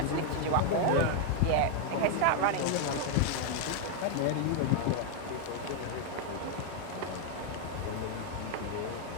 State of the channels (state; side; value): different; both; correlation 0.01